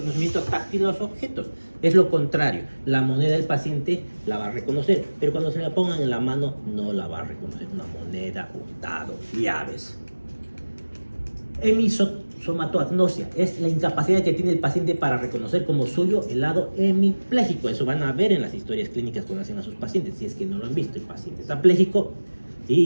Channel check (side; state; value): both; inverted; correlation -1.00